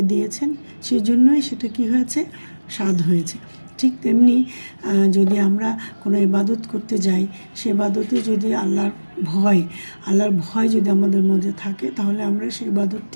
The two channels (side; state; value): both; inverted; correlation -1.00